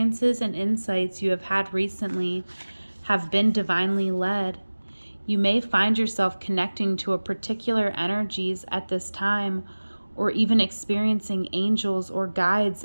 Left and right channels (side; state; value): both; inverted; correlation -1.00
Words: and insights you have had recently have been divinely led. You may find yourself connecting to a particular energies at this time, or even experiencing angels or guides